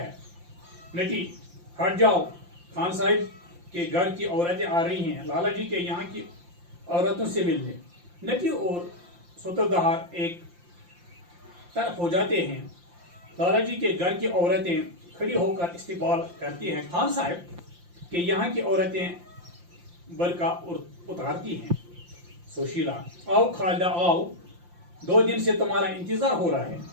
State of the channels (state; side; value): late; left; 5.7 ms